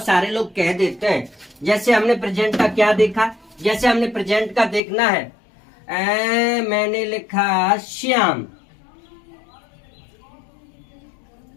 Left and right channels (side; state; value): right; drops out; at 4.8 s